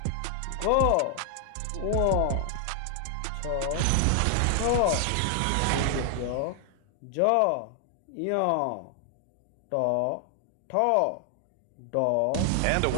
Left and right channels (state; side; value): different; both; correlation 0.00